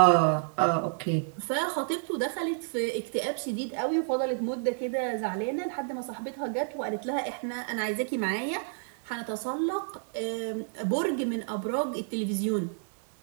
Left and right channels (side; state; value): left; silent; digital silence